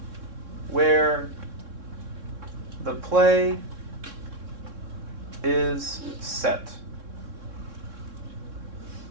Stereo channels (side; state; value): left; late; 3.6 ms